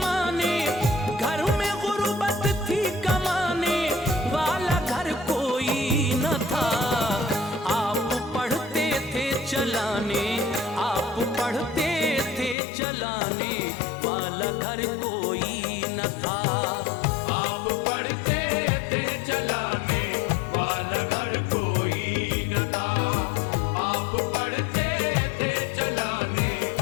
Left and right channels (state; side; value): drops out; right; at 12.6 s